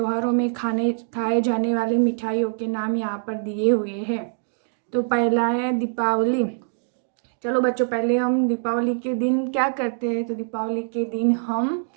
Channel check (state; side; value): silent; left; digital silence